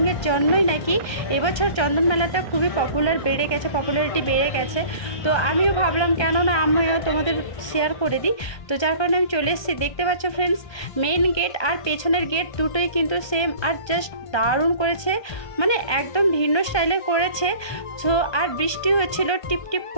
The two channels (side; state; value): right; late; 1.2 ms